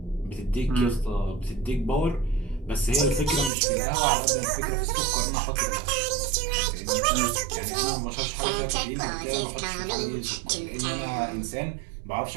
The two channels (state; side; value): drops out; left; at 3.5 s